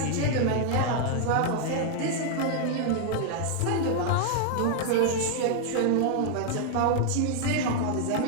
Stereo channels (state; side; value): different; both; correlation 0.00